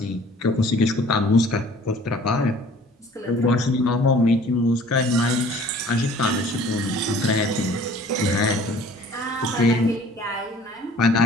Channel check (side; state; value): both; normal; correlation 0.51